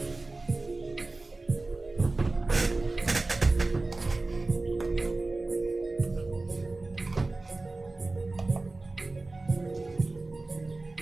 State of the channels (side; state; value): left; quieter; 3.3 dB